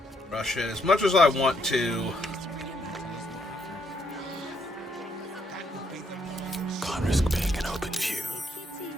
rush it as much as I want to. Can't risk being an open view.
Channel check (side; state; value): both; normal; correlation 0.73